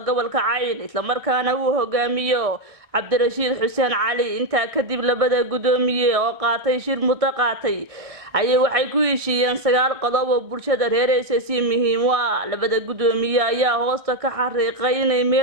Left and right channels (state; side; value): late; left; 1.6 ms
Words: gobolka Cayn isla markaana uu hogaamiyo Cabdirashiid Xuseen Cali inta kadib labada gudoomiye oo qaatay shir mutaqaatay ayay waxay ku heshiiyeen 9 qodob oo bulshada reer SSC muhiim u ah labada gudoomiye ayaa hoosta ka xariiqay inay